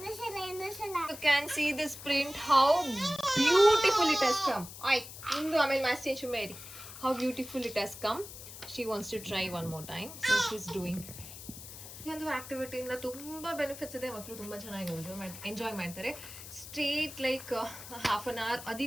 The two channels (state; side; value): noise; left; hiss, 13 dB below the sound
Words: You can see this print, how beautiful it has come. ಇಂದು ಆಮೇಲೆ ಮ್ಯಾಚ್ ಚೇಂಜ್ ಮಾಡಿ. How beautiful it has come. She wants to try one more time, so she's doing. ಈ ಒಂದು ಆಕ್ಟಿವಿಟಿಯಿಂದ ತುಂಬ benefits ಇದೆ. ಮಕ್ಕಳು ತುಂಬ ಚೆನ್ನಾಗಿ ಎಂಜಾಯ್ ಮಾಡ್ತಾರೆ. Straight like half an hour.